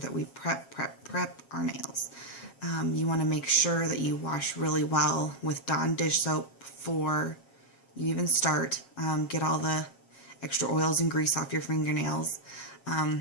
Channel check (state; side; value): late; right; 7.5 ms